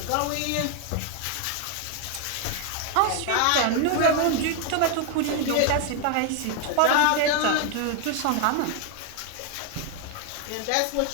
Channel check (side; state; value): both; different; correlation 0.01